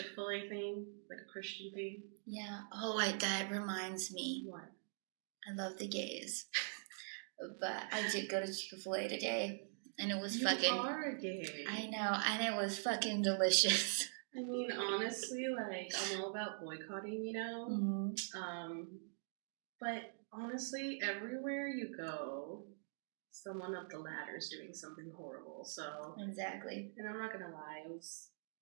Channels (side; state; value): left; silent; digital silence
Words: thing? Like a Christian thing? Yeah. Oh, that reminds me. What? I love the gays. But I did go to Chick-fil-A today. And it was you are gay. I know. And it was fucking delicious. I mean, honestly, like, I'm all about boycotting, you know? But honestly, everywhere you go, someone up the ladder is doing something horrible, so... Exactly. And I'm not gonna lie, it was